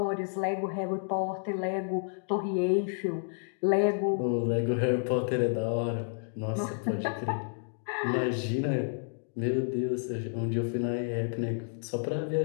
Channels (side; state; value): right; silent; digital silence